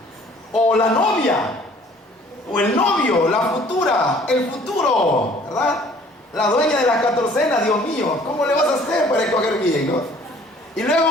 O la novia, o el novio, la futura, el futuro, ¿verdad? La dueña de la catorcena, Dios mío, ¿cómo le vas a hacer para escoger bien, no? Y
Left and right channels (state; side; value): normal; both; correlation 0.55